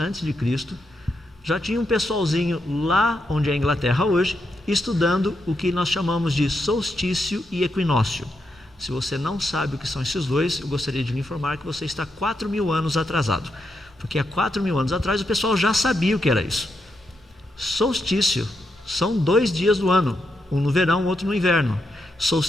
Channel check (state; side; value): normal; both; correlation 0.83